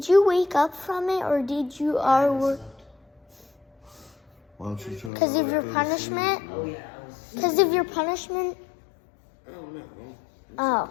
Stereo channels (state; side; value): drops out; right; at 5.1 s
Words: you wake up from it or did you or Why don't you try because to of your go to punishment? sleep, Oh bro? yeah, I was. Because of your punishment? Oh no.